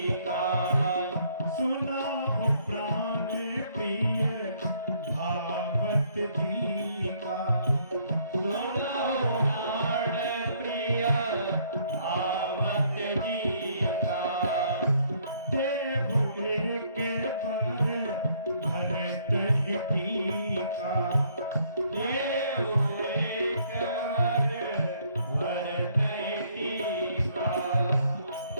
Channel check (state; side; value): inverted; both; correlation -0.66